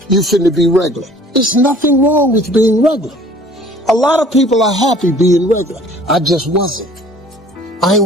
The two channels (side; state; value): both; normal; correlation 0.52